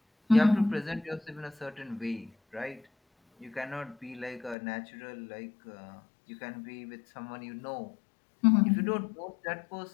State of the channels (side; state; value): right; drops out; at 4.5 s